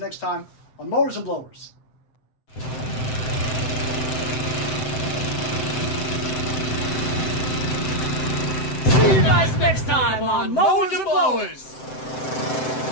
time on Mowers and Blowers. See you guys next time on Mowers and Blowers.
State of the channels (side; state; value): right; late; 7.8 ms